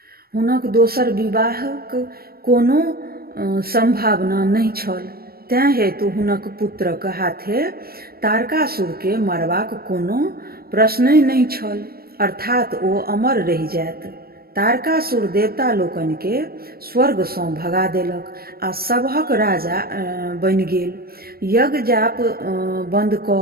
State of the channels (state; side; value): late; left; 0.44 ms